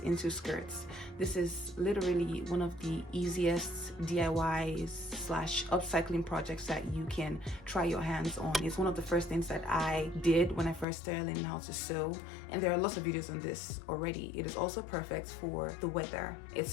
into skirts. This is literally one of the easiest DIYs slash upcycling projects that you can try your hands on. It's one of the first things that I did when I first started learning how to sew, and there are lots of videos on this already. It is also perfect for the weather.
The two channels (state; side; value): drops out; right; at 10.9 s